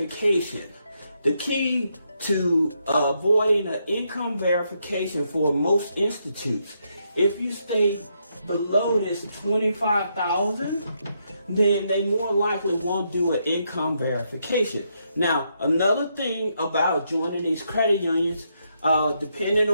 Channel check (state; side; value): inverted; both; correlation -0.78